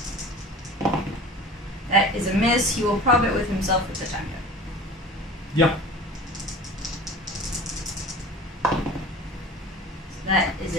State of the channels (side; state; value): both; normal; correlation 0.40